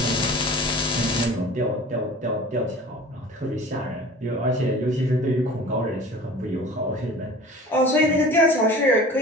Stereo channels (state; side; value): normal; both; correlation 0.41